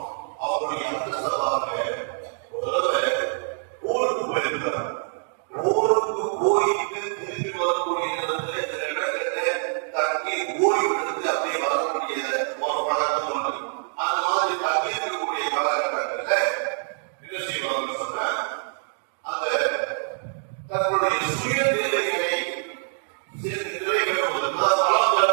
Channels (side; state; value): left; silent; digital silence